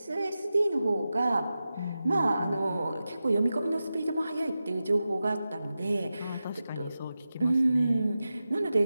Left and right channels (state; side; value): inverted; both; correlation -0.93